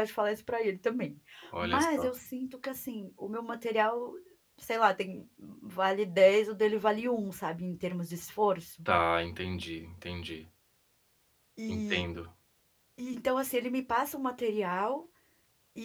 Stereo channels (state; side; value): identical; both; correlation 1.00